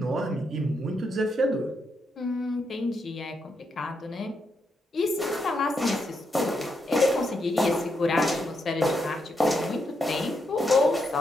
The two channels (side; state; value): both; normal; correlation 0.81